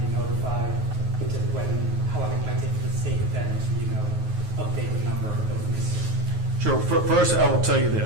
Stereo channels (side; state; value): left; late; 9.4 ms